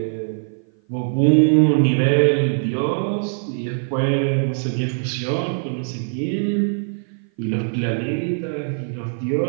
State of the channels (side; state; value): left; silent; 56 dB below the other